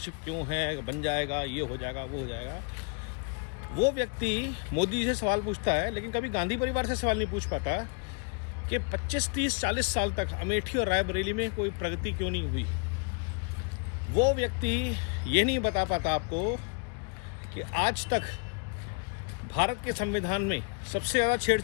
क्यों है, बन जाएगा, ये हो जाएगा, वो हो जाएगा। वो व्यक्ति मोदी जी से सवाल पूछता है, लेकिन कभी गांधी परिवार से सवाल नहीं पूछ पाता कि 25, 30, 40 साल तक अमेठी और रायबरेली में कोई प्रगति क्यों नहीं हुई। वो व्यक्ति ये नहीं बता पाता आपको कि आज तक भारत के संविधान में सबसे ज़्यादा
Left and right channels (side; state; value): right; quieter; 34.2 dB